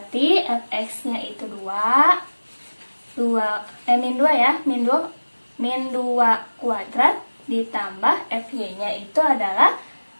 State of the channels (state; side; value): inverted; both; correlation -1.00